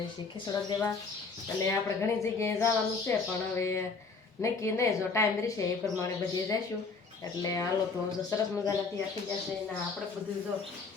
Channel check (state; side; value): quieter; right; 4.5 dB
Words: છીએ ખીચડો દેવા અને આપણે ઘણી જગ્યાએ જવાનું છે પણ હવે નક્કી નહીં જો ટાઈમ રહેશે એ પ્રમાણે બધી જઈશું એટલે હાલો તો જો સરસ મજાના તૈયાર થઈ જશે ને આપણે બધું જો